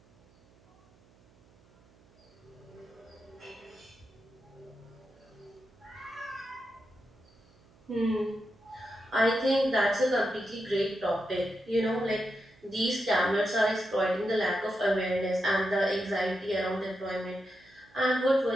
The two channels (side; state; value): right; noise; hum, 29 dB below the sound